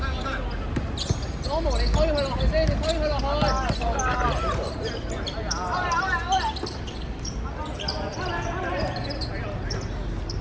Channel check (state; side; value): identical; both; correlation 1.00